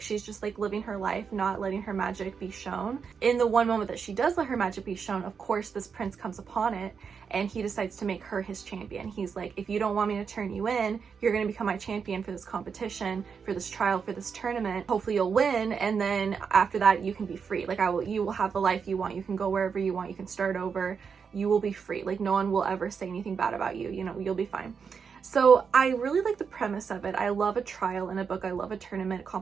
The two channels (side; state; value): left; quieter; 6.2 dB